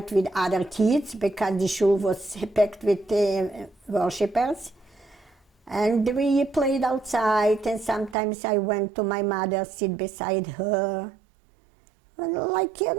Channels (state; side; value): drops out; left; at 8.2 s